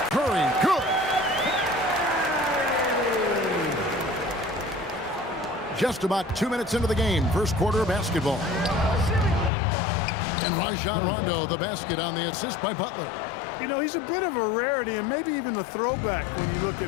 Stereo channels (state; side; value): drops out; right; at 9.5 s